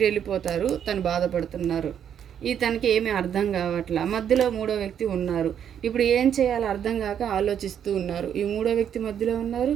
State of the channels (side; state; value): left; quieter; 8.9 dB